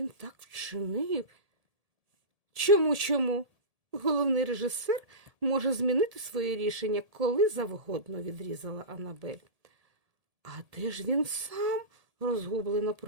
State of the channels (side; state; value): left; late; 1.8 ms